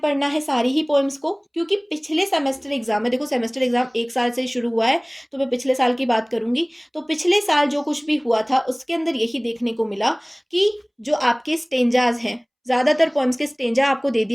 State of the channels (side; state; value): both; identical; correlation 1.00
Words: है सारी ही पोएम्स को, क्योंकि पिछले सेमेस्टर एग्जाम में, देखो सेमेस्टर एग्जाम एक साल से शुरू हुआ है तो मैं पिछले साल की बात करूंगी। तो पिछले साल जो कुछ भी हुआ था उसके अंदर यही देखने को मिला कि जो आपके स्टेंजाज हैं, ज़्यादातर पोएम्स के स्टेंजा आपको दे